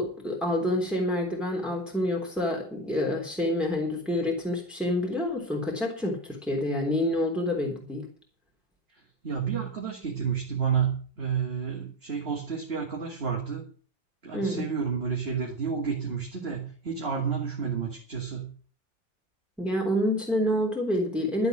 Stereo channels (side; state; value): both; normal; correlation 0.26